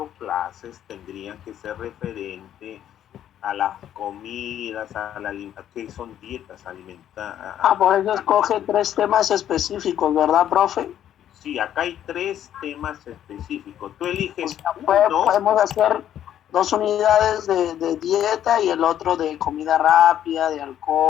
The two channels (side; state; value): right; quieter; 10.8 dB